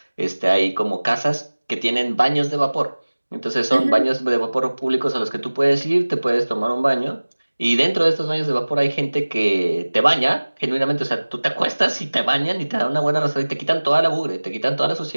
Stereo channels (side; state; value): both; inverted; correlation -1.00